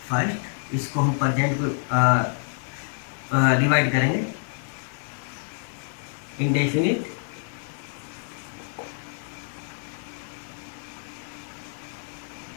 First इसको हम प्रेजेंट को डिवाइड करेंगे इंडेफिनिट,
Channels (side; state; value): right; silent; 57 dB below the other